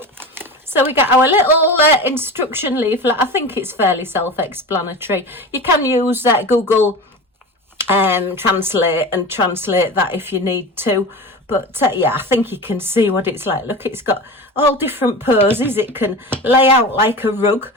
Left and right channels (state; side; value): normal; both; correlation 0.30